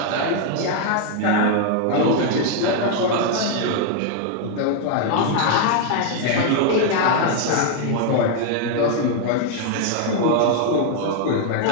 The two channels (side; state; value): both; different; correlation 0.00